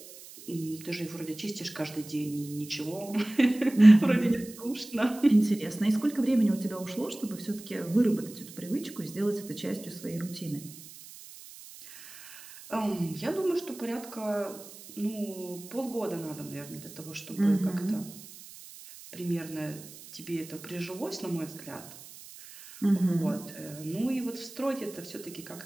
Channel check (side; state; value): right; noise; hiss, 17 dB below the sound